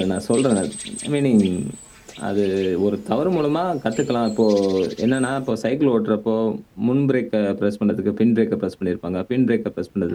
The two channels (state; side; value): identical; both; correlation 1.00